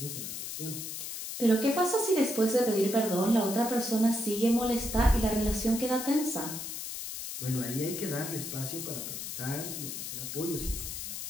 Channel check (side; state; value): left; noise; hiss, 6 dB below the sound